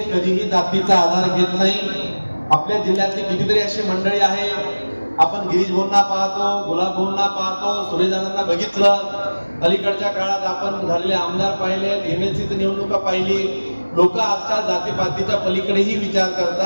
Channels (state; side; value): inverted; both; correlation -1.00